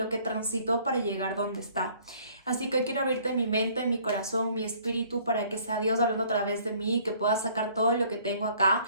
que transitó para llegar donde está. Así que hoy quiero abrirte mi mente, mi corazón, mi espíritu para que sea Dios hablando a través de mí, que pueda sacar todo lo que tengo acá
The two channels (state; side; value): inverted; both; correlation -0.58